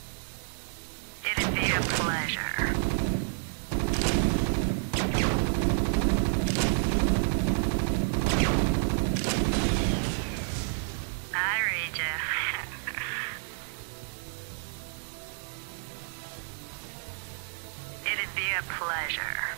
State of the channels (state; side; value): silent; left; digital silence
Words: It'd be a pleasure. I read you. So we'll just go ahead and head over there. Maybe we can make this a It'd be a double pleasure.